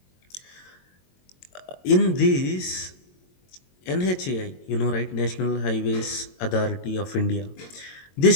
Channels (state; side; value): late; right; 22 ms